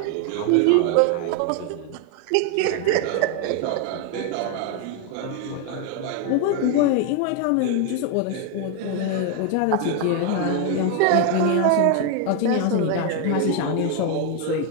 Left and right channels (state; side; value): different; both; correlation 0.01